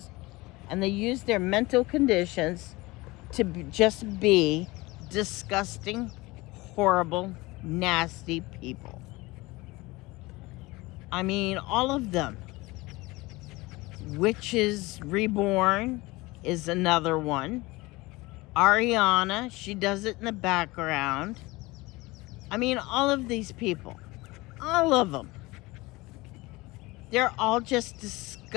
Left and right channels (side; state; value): right; quieter; 21.8 dB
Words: and they use their mental conditions to just be disgusting, horrible, nasty people. I mean, all of them. Witches Reborn is another one. Ariana, she does it in the background. I mean, all of these people. All of them. They're all just